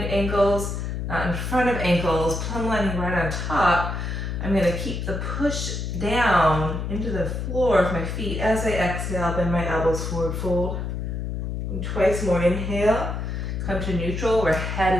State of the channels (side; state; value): left; noise; hum, 3 dB below the sound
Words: ankles, not in front of ankles, plumb lining right on top, I'm going to keep the push down into the floor of my feet as I exhale, bend my elbows forward, fold. And twice more. Inhale, come to neutral where head